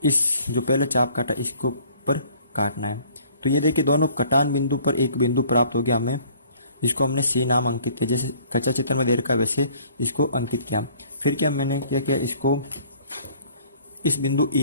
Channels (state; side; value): inverted; both; correlation -0.56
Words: इस जो पहले चाप काटा इसको ऊपर काटना है। तो ये देखिए दोनों कटान बिंदु पर एक बिंदु प्राप्त हो गया हमें, जिसको हमने सी नाम अंकित किया। जैसे कच्चा चित्र में दे रखा है वैसे इसको अंकित किया। फिर क्या मैंने क्या किया, इसको इस बिंदु